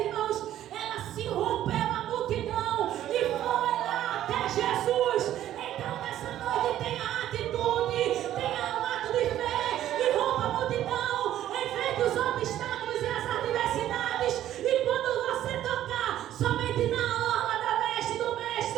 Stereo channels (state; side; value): quieter; left; 12.3 dB